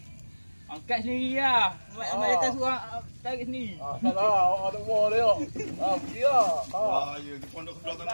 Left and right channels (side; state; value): both; inverted; correlation -1.00